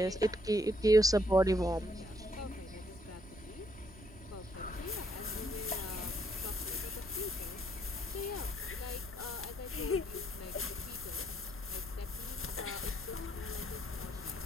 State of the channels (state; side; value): noise; right; rumble, 18 dB below the sound